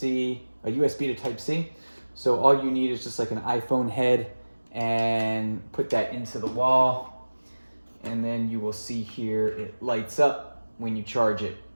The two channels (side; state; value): both; inverted; correlation -1.00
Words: a USB to Type-C. So all you need is just like an iPhone head and put that into the wall. And then you will see here, it lights up when you charge it.